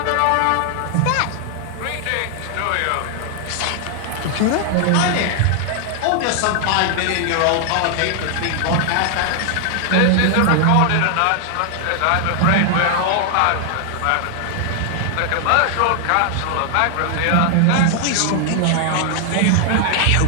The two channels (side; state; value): both; different; correlation 0.00